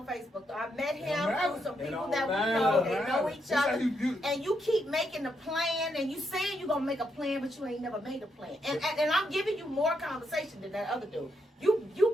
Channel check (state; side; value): normal; both; correlation 0.79